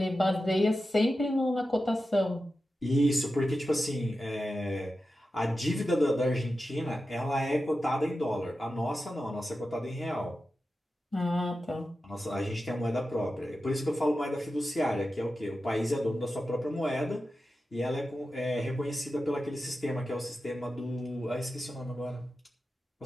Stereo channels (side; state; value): both; normal; correlation 0.92